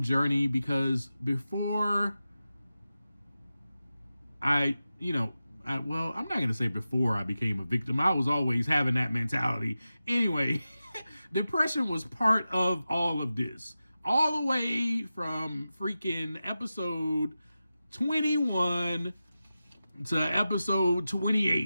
journey because before I'm not going to say before I became a victim. I was always having that mentality. Anyway, depression was part of all of this. All the way from freaking episode 21 to episode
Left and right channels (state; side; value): inverted; both; correlation -0.93